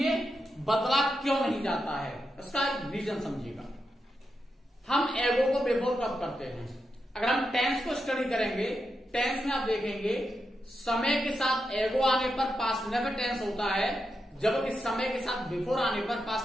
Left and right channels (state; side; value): normal; both; correlation 0.86